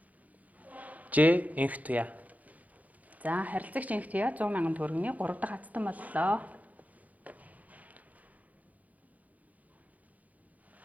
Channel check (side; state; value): left; late; 0.076 ms